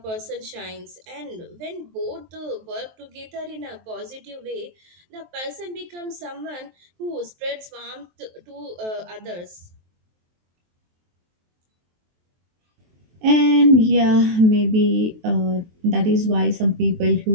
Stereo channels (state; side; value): late; left; 23 ms